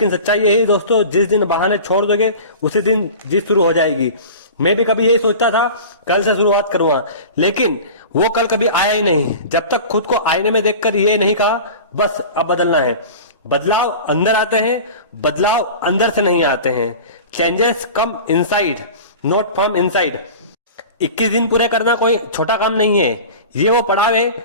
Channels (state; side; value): inverted; both; correlation -0.36